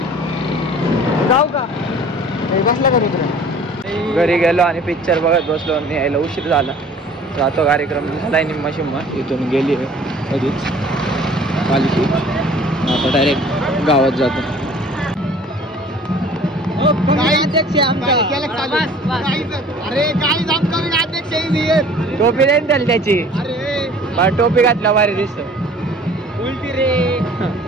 जाऊ का बसला का घरी गेलो आणि पिक्चर बघत बसलो आणि यायला उशीर झाला. जातो कार्यक्रम झालाय निम्मा शिम्मा. इथून गेली कधीच पालखी. आता डायरेक्ट गावात जातो. अरे काय अध्यक्ष टोपी देईन त्याला त्याची. अरे टोपी घातल्या भारी दिसत. उलटी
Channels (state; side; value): normal; both; correlation 0.49